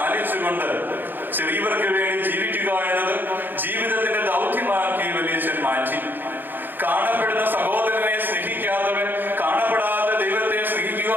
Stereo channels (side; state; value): left; late; 0.092 ms